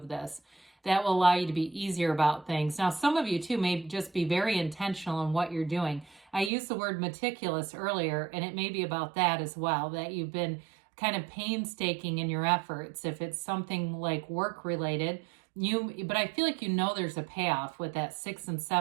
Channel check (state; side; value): drops out; left; at 6.5 s